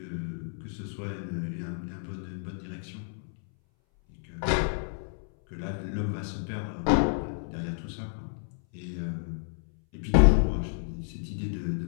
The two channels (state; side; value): silent; right; 58 dB below the other